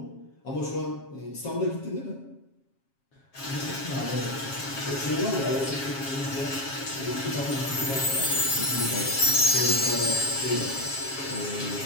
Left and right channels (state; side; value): late; right; 7.4 ms